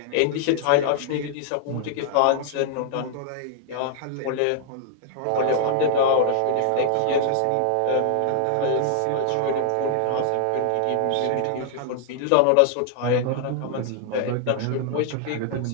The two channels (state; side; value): different; both; correlation 0.00